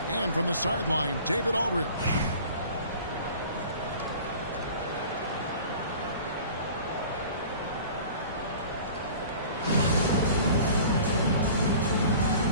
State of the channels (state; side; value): inverted; both; correlation -0.44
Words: And from the sideline, David Aldridge.